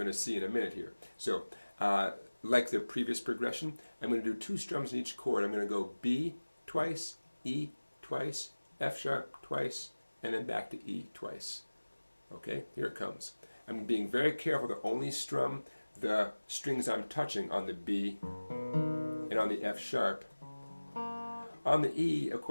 to see in a minute here. So, like the previous progression, I'm going to do 2 strums in each chord. I'm going to go B twice, E twice, F sharp twice, and then back to E twice. Okay? Here it comes. I'm being very careful to only strum the strings I'm touching on the B and on the F sharp. On the E, of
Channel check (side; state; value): both; inverted; correlation -1.00